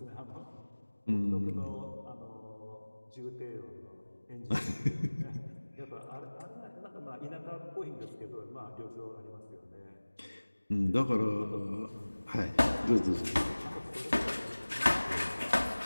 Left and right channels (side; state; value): both; inverted; correlation -1.00